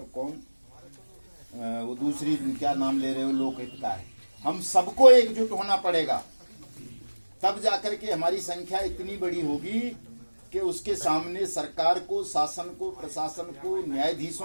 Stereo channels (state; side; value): inverted; both; correlation -1.00